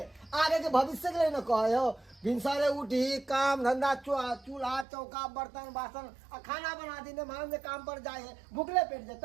आगे के भविष्य के लिए न कहे हो भिनसरे उठी काम धंधा चूल्हा चौका बर्तन बासन आ खाना बना दी मान जे काम पर जाए है भूखले पेट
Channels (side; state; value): left; drops out; at 4.9 s